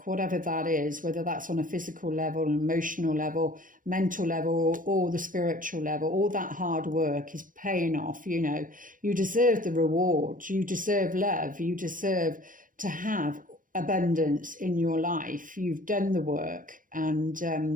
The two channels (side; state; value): left; late; 0.39 ms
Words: whatever that is, whether that's on a physical level, an emotional level, mental level, or the spiritual level, all that hard work is paying off. You know, you deserve the reward, you deserve love, you deserve to have abundance in your life. You've done the work, and